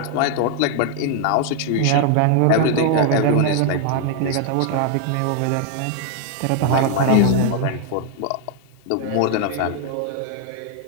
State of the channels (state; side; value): different; both; correlation 0.00